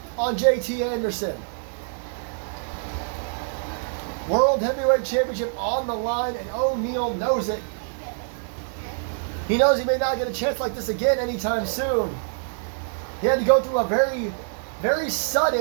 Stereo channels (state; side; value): silent; left; digital silence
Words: on JT Anderson. World Heavyweight Championship on the line, and O'Neill knows it. He knows he may not get a chance like this again anytime soon. He had to go through a very, very